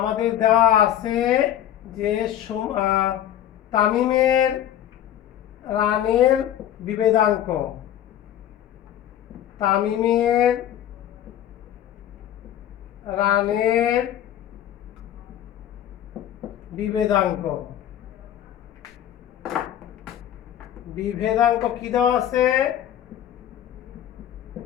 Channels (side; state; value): right; quieter; 11.2 dB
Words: দেওয়া আছে যে তামিমের রানের বিভেদাঙ্ক, তামিমের রানের বিভেদাঙ্ক, বিভেদাঙ্ক কি দেওয়া আছে,